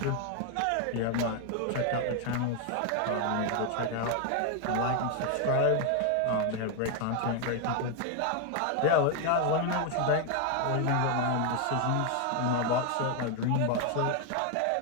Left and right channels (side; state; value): both; different; correlation 0.01